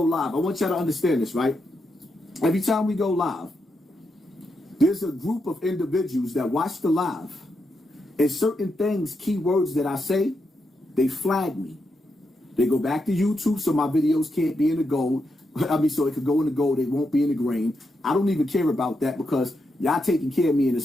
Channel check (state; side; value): normal; both; correlation 0.83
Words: live, I want y'all to understand this, right? Every time we go live, there's a group of individuals that watch the live. And certain things, keywords that I say, they flag me. They go back to YouTube so my videos can't be in the gold. So it could go in the gold, they won't be in the green. I don't even care about that because y'all taking care of me in the